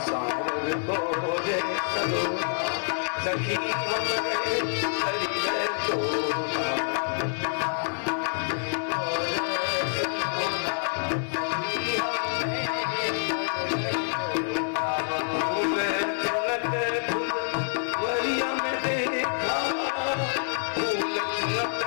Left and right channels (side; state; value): right; silent; 60 dB below the other